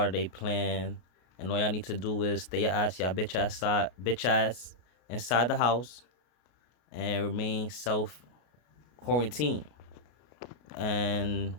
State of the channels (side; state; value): right; late; 33 ms